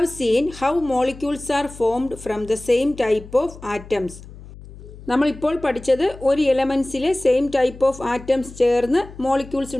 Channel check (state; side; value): noise; left; hum, 17 dB below the sound